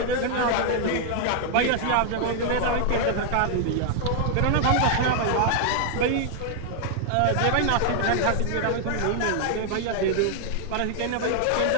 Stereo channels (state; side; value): different; both; correlation 0.00